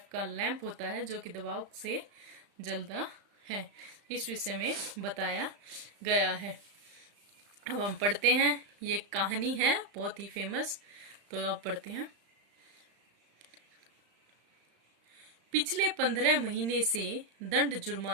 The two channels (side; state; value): left; late; 35 ms